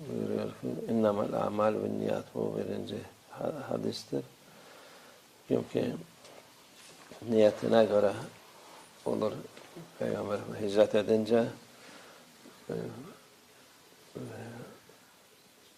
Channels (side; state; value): both; identical; correlation 1.00